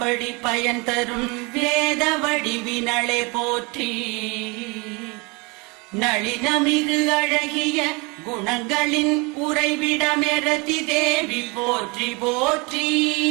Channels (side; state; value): left; quieter; 28.4 dB